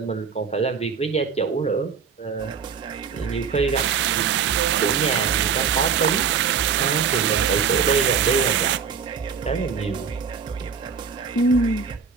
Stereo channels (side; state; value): left; quieter; 6.4 dB